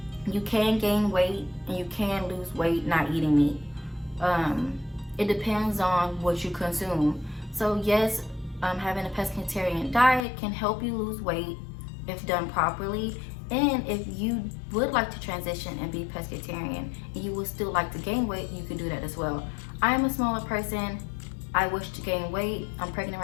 You can gain weight and you can lose weight not eating meat. It depends on what you consume. So yes, having a pescatarian diet can help you lose weight if done properly. And if you would like to transition and be pescatarian and you would still like to gain weight, you can do that as well. I am a smaller person. I wish to gain weight. I'm pregnant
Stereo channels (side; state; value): right; drops out; at 10.2 s